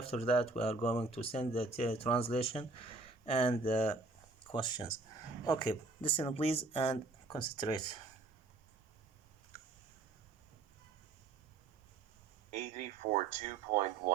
that we are going to send the translation and the questions. Okay, listen please and concentrate. 84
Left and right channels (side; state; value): left; quieter; 3.5 dB